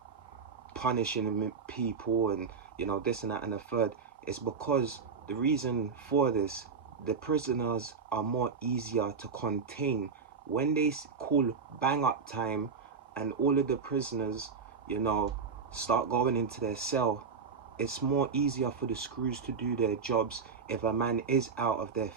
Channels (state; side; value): quieter; left; 5.5 dB